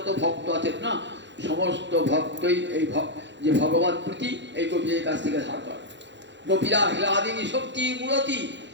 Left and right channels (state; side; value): late; left; 0.52 ms